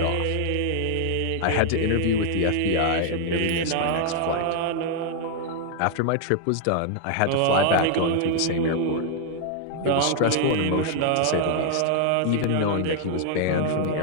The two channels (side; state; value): both; different; correlation 0.00